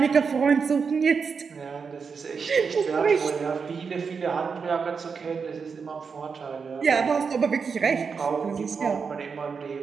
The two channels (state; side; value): quieter; left; 5.6 dB